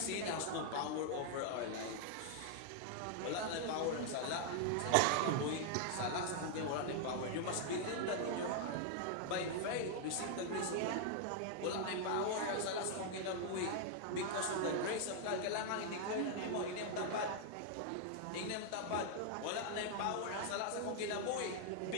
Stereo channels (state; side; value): different; both; correlation 0.00